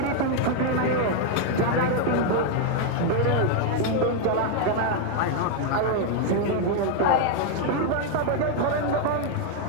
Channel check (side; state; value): both; different; correlation 0.01